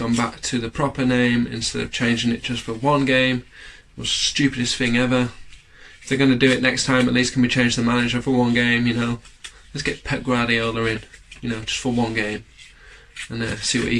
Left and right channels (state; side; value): identical; both; correlation 1.00